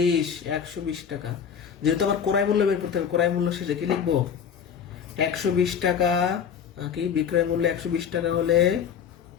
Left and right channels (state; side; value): quieter; right; 7.6 dB